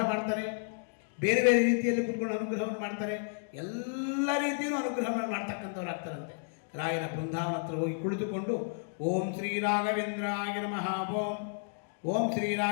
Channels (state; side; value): silent; right; digital silence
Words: ಮಾಡ್ತಾರೆ, ಬೇರೆ ಬೇರೆ ರೀತಿಯಲ್ಲಿ ಕೂತ್ಕೊಂಡು ಅನುಗ್ರಹವನ್ನು ಮಾಡ್ತಾರೆ, ಎಲ್ಲ ರೀತಿಯೂ ಅನುಗ್ರಹವನ್ನು ಮಾಡ್ತಕ್ಕಂಥವ್ರು ಆಗ್ತಾರಂತೆ. ರಾಯರ ಬೃಂದಾವನ ಹತ್ರ ಹೋಗಿ ಕುಳಿತುಕೊಂಡು ಓಂ ಶ್ರೀ ರಾಘವೇಂದ್ರಾಯ ನಮಃ ಓಂ, ಓಂ ಶ್ರೀ